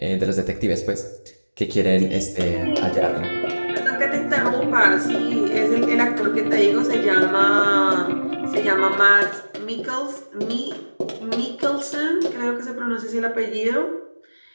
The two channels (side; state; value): both; inverted; correlation -1.00